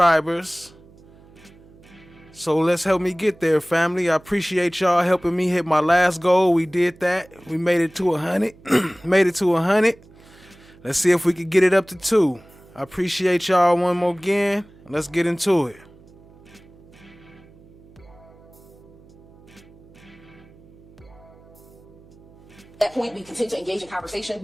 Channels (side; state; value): right; noise; hum, 25 dB below the sound